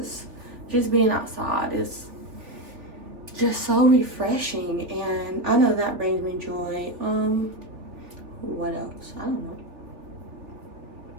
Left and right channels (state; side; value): late; left; 3.2 ms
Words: just being outside is just so refreshing, and I know that brings me joy. What else? I don't know.